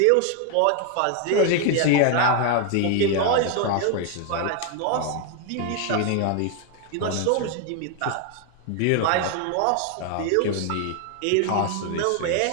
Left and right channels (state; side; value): different; both; correlation 0.01